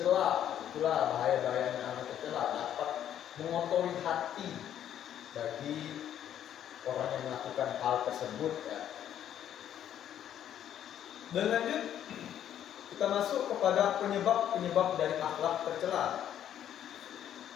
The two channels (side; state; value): right; quieter; 10.4 dB